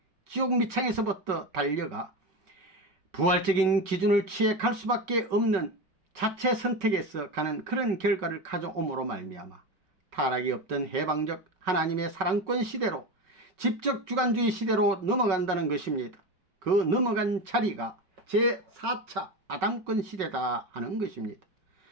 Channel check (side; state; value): left; late; 5.3 ms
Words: 지옥 밑창에서부터 달려가 부활적인 기준을 취해 갈 수밖에 없는 자체 선택에서 가는 그런 결과를 가져옴으로 말미암아 타락이 없던 해방적 하나님의 사랑권 시대로 집적 주관주의 시대로 넘어간다는 것입니다. 그 넘어간 자리가 제4차 아담권 시대다 하는 것입니다.